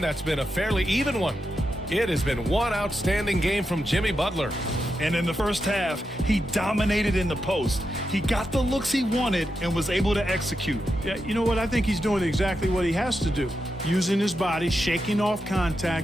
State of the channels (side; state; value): both; normal; correlation 0.87